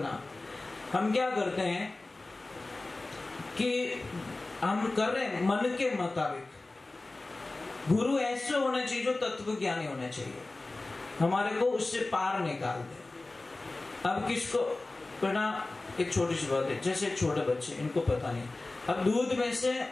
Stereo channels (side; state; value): right; quieter; 3.1 dB